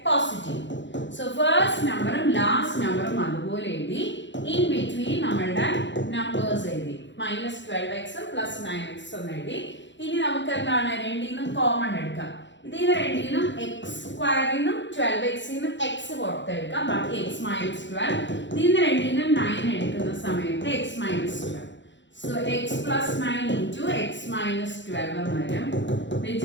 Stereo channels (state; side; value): late; right; 0.53 ms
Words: പോസിറ്റീവും. സോ ഫസ്റ്റ് നമ്പറും ലാസ്റ്റ് നമ്പറും അതുപോലെ എഴുതി. ഇൻ ബിറ്റ്വീൻ നമ്മളുടെ നമ്പേഴ്സ് എഴുതി. -12x +9x എന്ന് എഴുതി. ഇനി നമുക്ക് എന്താണ് രണ്ടിൽ നിന്നും കോമൺ എടുക്കാം. ഇതിൽ രണ്ടിനും എക്സ് സ്ക്വയറിൽ നിന്നും 12x നിന്നും എക്സ് പുറത്തെടുക്കാം. ബാക്കി x minus 12. ഇതിൽ രണ്ടിനും 9 എടുക്കുന്ന സമയത്ത് x minus 12. So x plus 9 into x minus 12 എന്ന് വരും, which